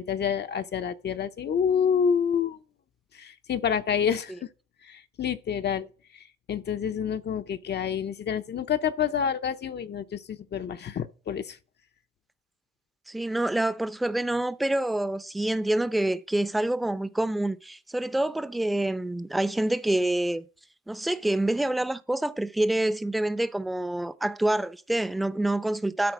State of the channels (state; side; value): normal; both; correlation 0.72